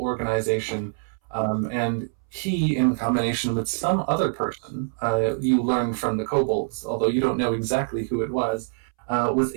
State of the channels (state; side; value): silent; left; 62 dB below the other